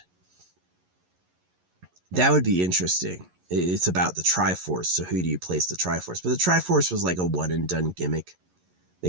That would be interesting. It's about the Triforce, so who do you place the Triforce? But the Triforce was like a one and done gimmick. They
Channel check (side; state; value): left; late; 11 ms